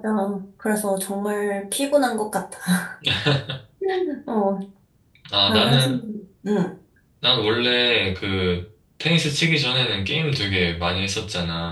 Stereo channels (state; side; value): identical; both; correlation 1.00